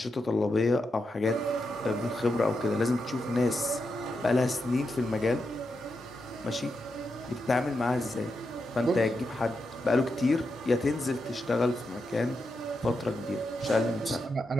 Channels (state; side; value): normal; both; correlation 0.86